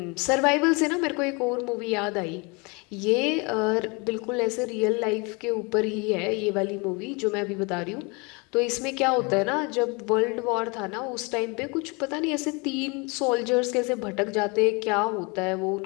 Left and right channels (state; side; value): quieter; right; 29.2 dB